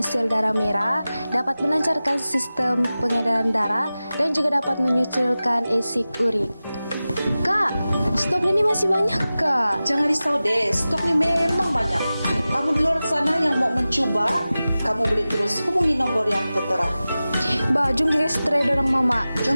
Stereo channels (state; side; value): inverted; both; correlation -0.96